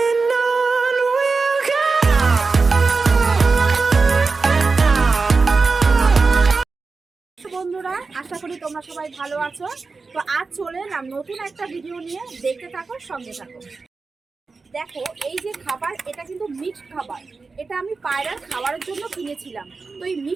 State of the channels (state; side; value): quieter; left; 4.3 dB